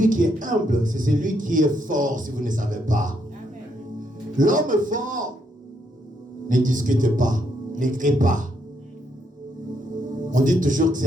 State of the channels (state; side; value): normal; both; correlation 0.76